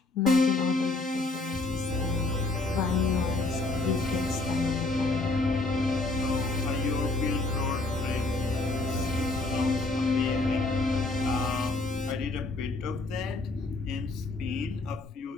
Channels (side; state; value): right; quieter; 3.2 dB